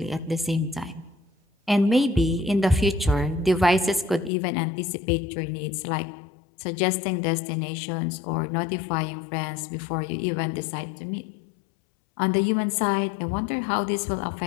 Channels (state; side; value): drops out; right; at 4.3 s